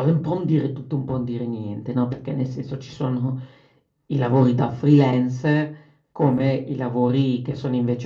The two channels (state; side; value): identical; both; correlation 1.00